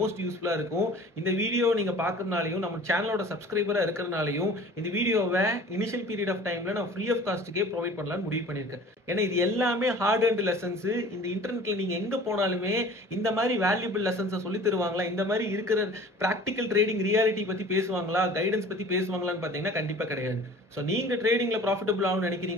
யூஸ்ஃபுல்லாக இருக்கும். இந்த வீடியோ நீங்கள் பார்க்கறதுனாலையும் நம்ம சேனலோட சப்ஸ்கிரைபரா இருக்கிறதுனாலையும் இந்த வீடியோவை இனிஷியல் பீரியட் ஆஃப் டைம்ல நான் ஃப்ரீ ஆஃப் காஸ்ட்டுக்கே ப்ரொவைட் பண்ணலாம்னு முடிவு பண்ணியிருக்கேன். ஏன்னா இது எல்லாமே ஹார்ட் அண்ட் லெசன்ஸ். இந்த இன்டர்நெட்ல நீங்க எங்க போனாலுமே இந்த மாதிரி வேல்யூபிள் லெசன்ஸை சொல்லி தருவாங்களா, இந்த மாதிரி இருக்கிற பிராக்டிக்கல் ட்ரேடிங் ரியாலிட்டி பத்தி பேசுவாங்களா, கைடன்ஸ் பத்தி பேசுவாங்களான்னு பாத்தீங்கன்னா கண்டிப்பா கிடையாது. ஸோ நீங்க ட்ரேடிங்ல ப்ராஃபிட்டபிள் ஆகும்னு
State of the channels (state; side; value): normal; both; correlation 0.45